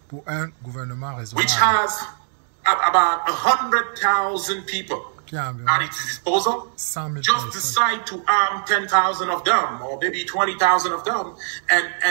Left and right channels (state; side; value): silent; left; digital silence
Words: pour un gouvernement raisonnable which has about 100,000 people at its disposal just decide to arm 10,000 of them or maybe 20,000 of them